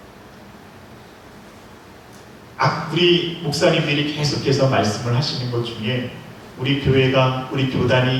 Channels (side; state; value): both; identical; correlation 1.00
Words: 우리 목사님들이 계속해서 말씀을 하시는 것 중에 우리 교회가, 우리